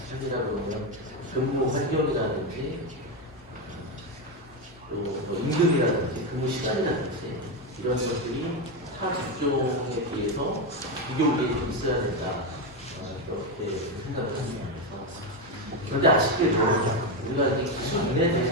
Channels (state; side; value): normal; both; correlation 0.10